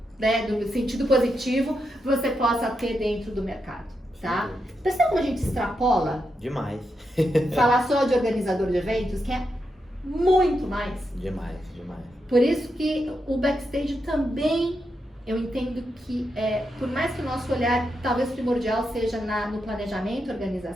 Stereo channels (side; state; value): both; normal; correlation 0.85